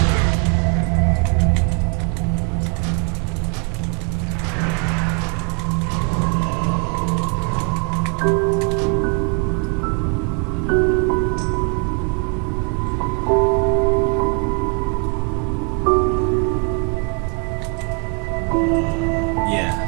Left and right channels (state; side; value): quieter; left; 34.3 dB